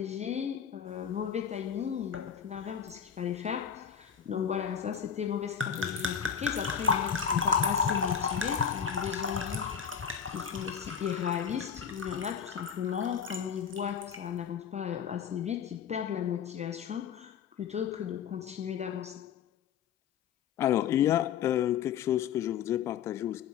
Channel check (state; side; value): quieter; right; 7.7 dB